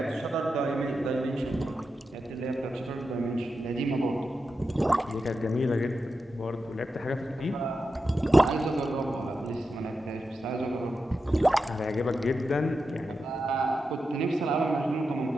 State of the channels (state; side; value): normal; both; correlation 0.89